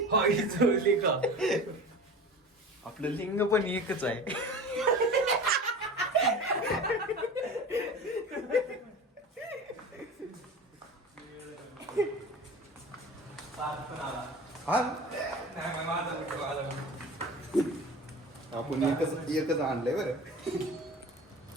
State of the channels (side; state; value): both; normal; correlation 0.35